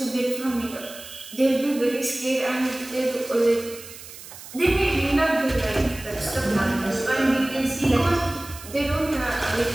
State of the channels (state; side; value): noise; right; hiss, 15 dB below the sound